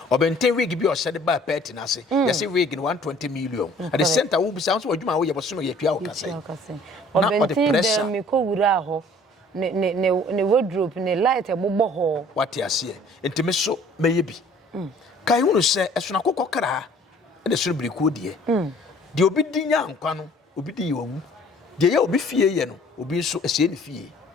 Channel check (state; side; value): normal; both; correlation 0.54